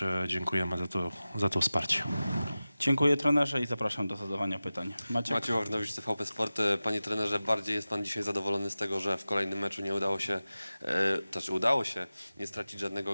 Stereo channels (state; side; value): inverted; both; correlation -0.96